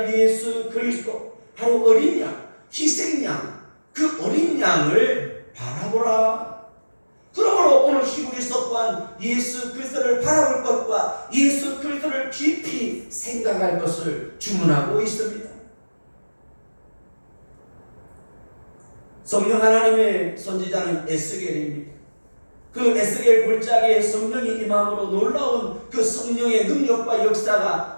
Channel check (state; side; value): inverted; both; correlation -1.00